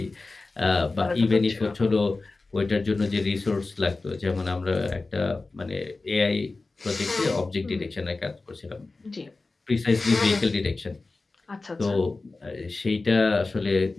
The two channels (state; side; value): quieter; right; 3.5 dB